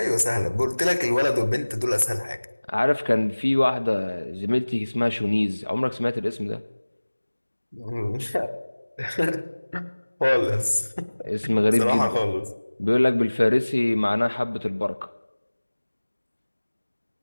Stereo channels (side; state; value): both; inverted; correlation -1.00